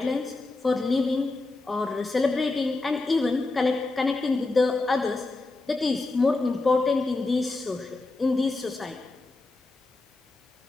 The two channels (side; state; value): right; quieter; 3.3 dB